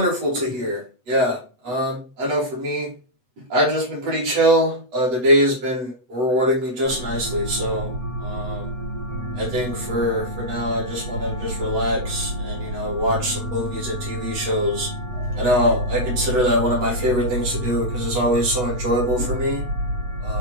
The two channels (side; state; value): left; late; 8.0 ms